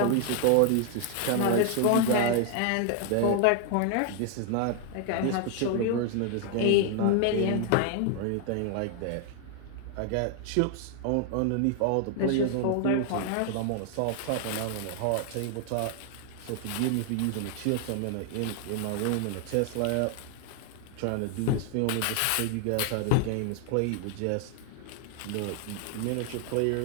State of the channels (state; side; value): different; both; correlation 0.00